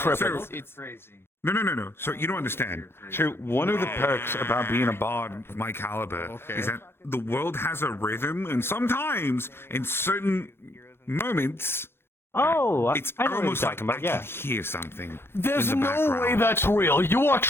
So, No. So you don't understand. So one of the perks about being a bard of my caliber is that the world has a rhythm, and sometimes in certain moments, Oh, it's I know what you're almost like talking about. I Yeah. can hear something. There's in the no background. way that's real. You are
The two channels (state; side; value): late; right; 0.11 ms